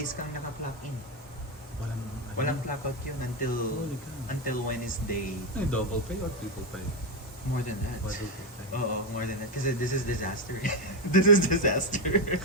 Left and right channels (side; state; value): both; normal; correlation 0.08